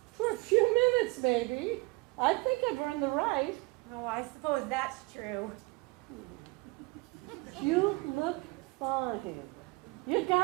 For a few minutes, maybe. I think I've earned the right. Oh, I suppose that's true. You look fine. You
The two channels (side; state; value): left; quieter; 25.7 dB